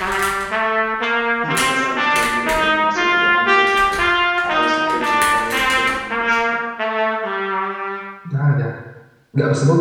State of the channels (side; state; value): both; identical; correlation 1.00